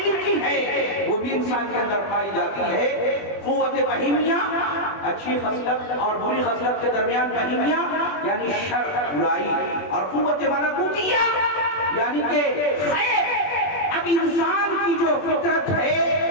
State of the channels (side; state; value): right; late; 21 ms